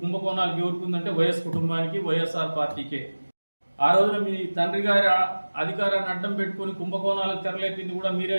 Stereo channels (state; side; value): inverted; both; correlation -1.00